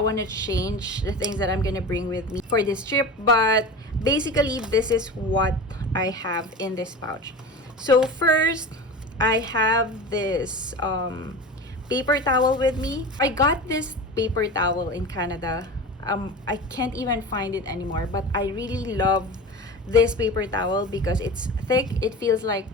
to change the things that I'm gonna bring with me for this trip, but basically this is what I have in this pouch. So first, I have this paper towel with me. I got this paper towel in Canada. I can't even find it anymore, but I really love this paper towel because it's thick, it feels like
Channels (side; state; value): both; normal; correlation 0.31